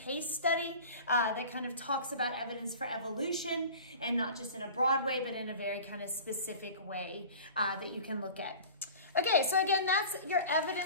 study that kind of talks about evidence for evolution, and not just in a broad way, but in a very kind of specific way that you can look at. Okay, so again, that's your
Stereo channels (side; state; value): both; inverted; correlation -0.39